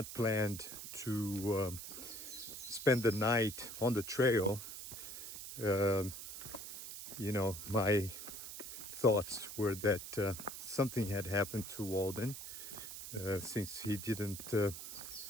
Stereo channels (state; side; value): noise; right; hiss, 9 dB below the sound